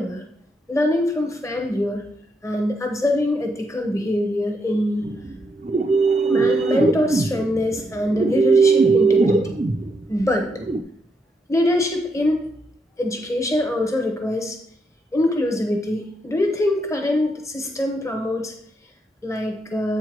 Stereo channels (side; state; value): both; normal; correlation 0.79